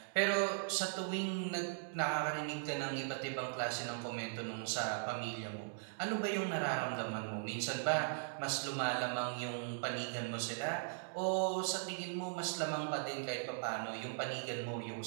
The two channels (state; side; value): silent; left; digital silence